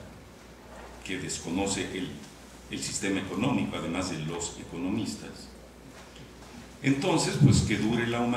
que desconoce el sistema económico, además de los economistas. Entonces, pues que dure la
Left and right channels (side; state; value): both; identical; correlation 1.00